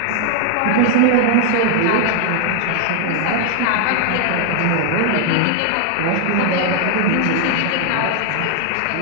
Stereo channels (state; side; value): different; both; correlation 0.00